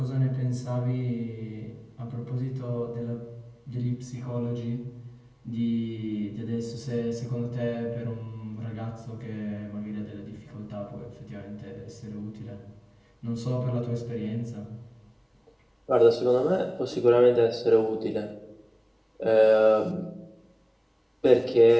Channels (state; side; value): identical; both; correlation 1.00